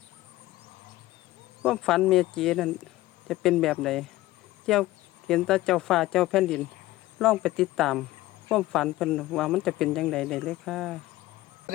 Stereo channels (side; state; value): right; quieter; 17.2 dB